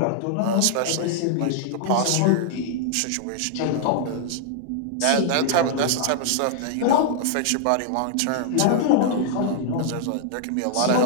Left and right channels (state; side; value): different; both; correlation -0.01